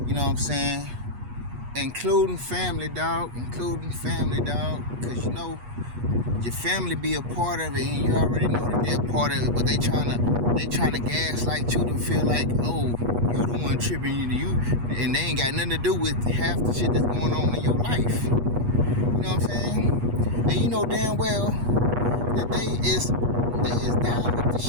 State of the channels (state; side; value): late; left; 8.3 ms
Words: You know what I'm saying? Including family, dog. Because you know, your family be a part of it, and you already know that they're a part of it, but they trying to gaslight you to feel like, oh, you the one tripping you, and they ain't got nothing to do with half the shit that's going on in your life. You know what I'm saying? And you know damn well that they is down with the